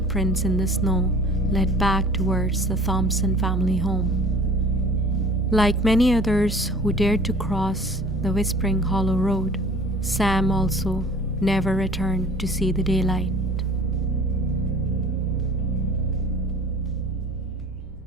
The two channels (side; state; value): left; noise; rumble, 16 dB below the sound